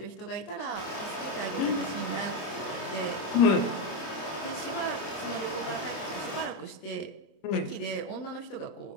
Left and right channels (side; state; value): right; late; 26 ms